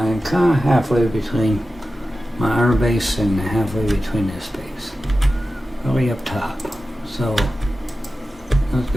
kind of halfway between my iron base and halfway between this base. Really up top. So let's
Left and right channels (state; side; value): normal; both; correlation 0.94